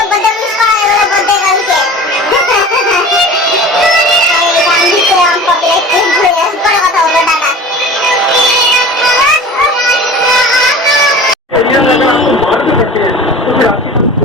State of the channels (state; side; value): normal; both; correlation 0.38